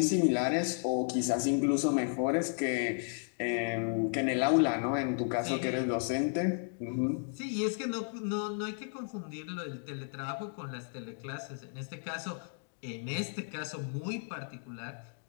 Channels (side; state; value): right; silent; 55 dB below the other